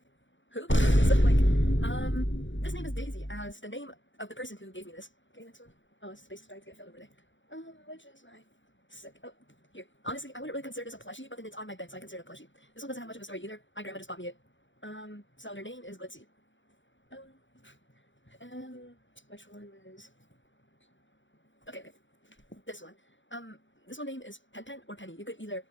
who? So like, this name is Daisy as the name of the person who gave me this. Okay, next one. Oh, this space is starting to get filled over there. Which is my oh, here. Honestly, I wouldn't really consider this a plushie, but then it's on my bed, so I consider it a plushie. This one doesn't have much of a story either. My grandma just bought me it. So their name is Glitzy. Which one was... Okay. This one. This one name is Pen or Penny. You could either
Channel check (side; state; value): right; late; 0.55 ms